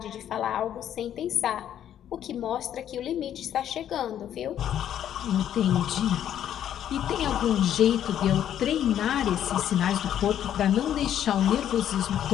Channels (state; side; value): quieter; right; 10.4 dB